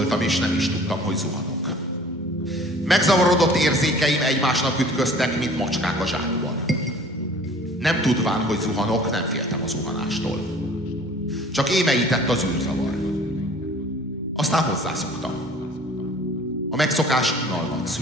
és nem is tudtam, hogy zuhanok. Megzavarodott érzékeim egymásnak ütköztek, mint macskák a zsákban. Nem tudván, hogy zuhanok, nem féltem a zuhanástól. Csak émeített az űrzavar. Aztán hozzászoktam. A megszokás unalmat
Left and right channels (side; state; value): both; normal; correlation 0.49